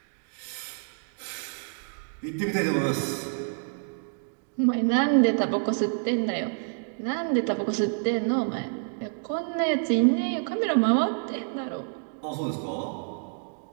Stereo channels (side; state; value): left; silent; digital silence